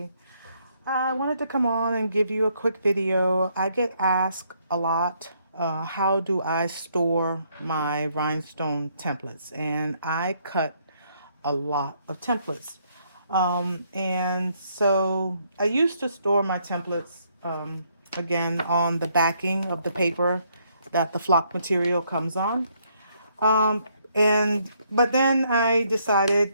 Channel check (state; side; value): inverted; both; correlation -0.71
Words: I wanted to come on and give you a quick video. I get asked a lot, how do I store my rhinestone templates? And I cut a lot of templates. And so I used to store my templates, again, on the backing of the paper that the flock material comes on. Um, but then I